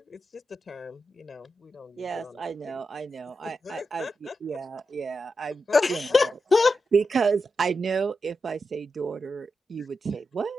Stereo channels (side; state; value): both; normal; correlation 0.88